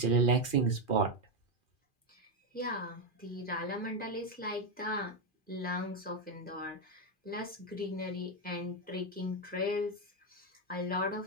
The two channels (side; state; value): right; late; 2.4 ms